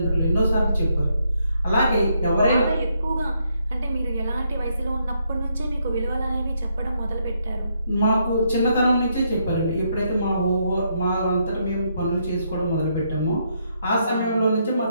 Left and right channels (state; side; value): inverted; both; correlation -0.76